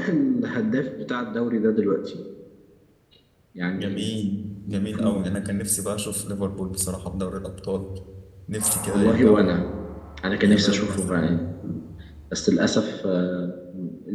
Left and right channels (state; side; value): identical; both; correlation 1.00